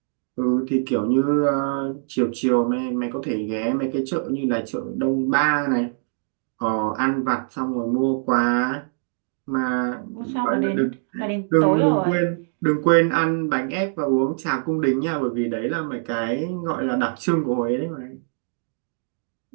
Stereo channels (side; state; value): left; silent; digital silence